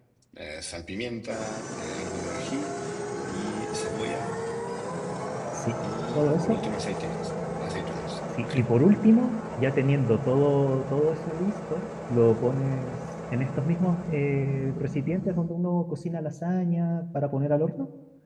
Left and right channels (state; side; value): identical; both; correlation 1.00